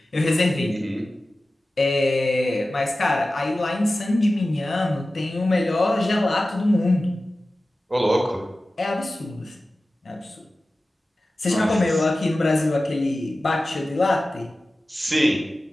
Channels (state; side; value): normal; both; correlation 0.96